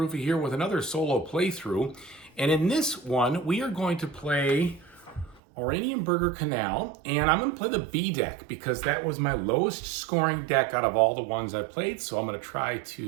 here with another solo playthrough. And in this one, we are going to play Oranienburger Kanal, and I'm going to play the B deck because that was my lowest scoring deck out of all the ones I played, so I'm going to try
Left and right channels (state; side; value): drops out; left; at 5.4 s